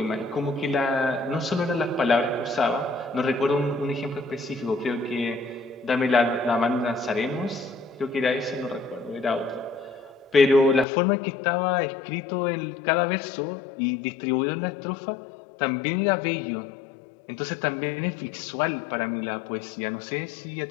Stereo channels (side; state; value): right; drops out; at 10.9 s